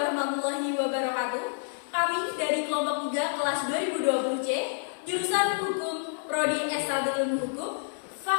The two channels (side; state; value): right; silent; 59 dB below the other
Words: wabarakatuh. Kami dari kelompok 3 kelas 2020C, jurusan Hukum, Prodi S1 Ilmu Hukum,